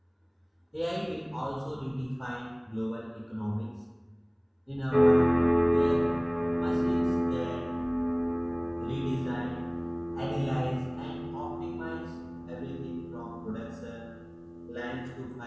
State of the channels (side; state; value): both; identical; correlation 1.00